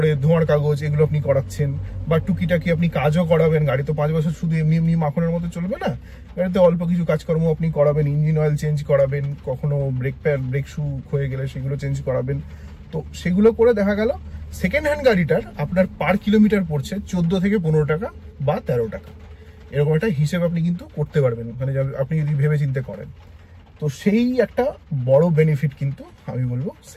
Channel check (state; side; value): identical; both; correlation 1.00